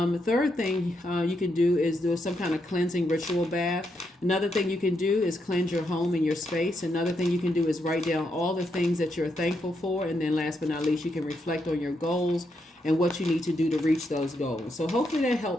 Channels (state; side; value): normal; both; correlation 0.80